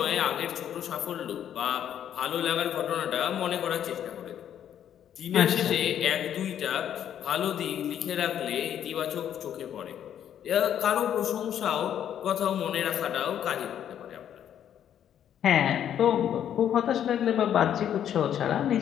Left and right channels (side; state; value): right; quieter; 9.9 dB